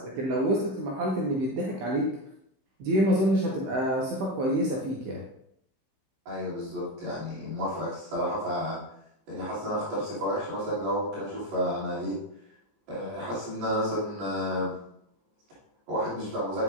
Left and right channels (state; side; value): late; left; 15 ms